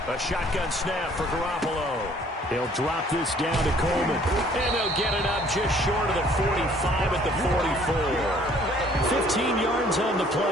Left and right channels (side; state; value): both; normal; correlation 0.58